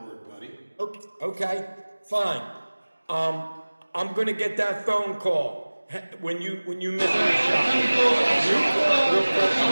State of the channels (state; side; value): inverted; both; correlation -1.00